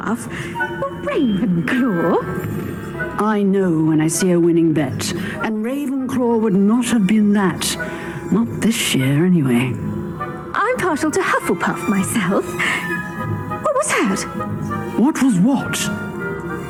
Ravenclaw? I know when I see a winning bet, and Ravenclaw would not have been that. Not this year, anyway. I'm partial to Hufflepuff myself. What was that? What was what?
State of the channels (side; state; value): both; identical; correlation 1.00